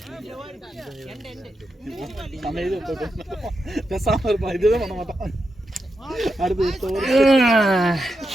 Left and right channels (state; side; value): normal; both; correlation 0.87